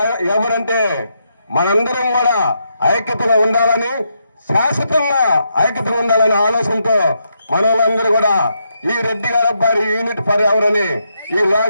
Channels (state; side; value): inverted; both; correlation -0.80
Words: ఎవరంటే మనందరం కూడా ఐక్యతగా ఉండాలని, శాశ్వతంగా ఐక్యతగా ఉండాలనే ఆలోచనతో మన వాళ్ళందరూ కూడా ఈ రెడ్డి గారి అబ్బాయి యూనిట్ ఫర్ ఎవరని ఈ